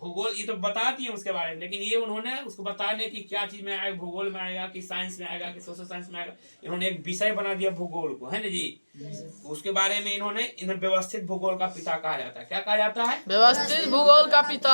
ये तो बता दिए उसके बारे में, लेकिन ये उन्होंने उसको बताने की क्या चीज में आएगा, भूगोल में आएगा कि साइंस में आएगा कि सोशल साइंस में आएगा, इन्होंने एक विषय बना दिया भूगोल को, है ना जी। उसके बारे में इन्हें व्यवस्थित भूगोल का पिता कहा जाता है। क्या कहा जाता है? व्यवस्थित भूगोल का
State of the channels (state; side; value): inverted; both; correlation -1.00